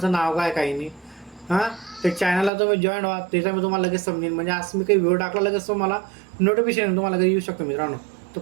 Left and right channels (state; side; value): drops out; left; at 2.5 s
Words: नाव काय काही नाही. त्या चॅनलला तुम्ही जॉईन व्हा, त्याचा मी तुम्हाला लगेच समजेल. म्हणजे आज मी काही व्हिडिओ टाकला लगेच तुम्हाला नोटिफिकेशन तुम्हाला लगेच येऊ शकतो मित्रांनो. तर